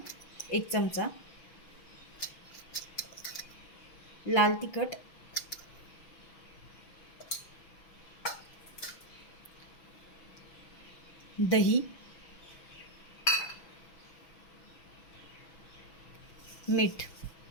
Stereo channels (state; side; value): late; right; 6.1 ms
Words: 1 चमचा, लाल तिखट, दही, मीठ।